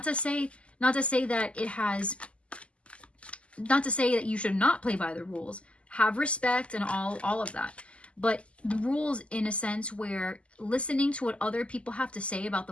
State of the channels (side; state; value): right; late; 0.057 ms